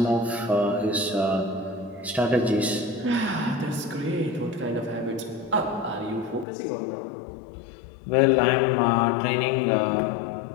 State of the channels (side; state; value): right; drops out; at 6.5 s